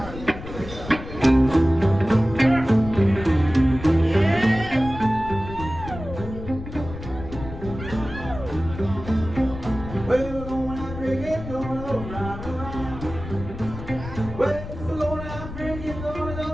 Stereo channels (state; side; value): noise; left; rumble, 11 dB below the sound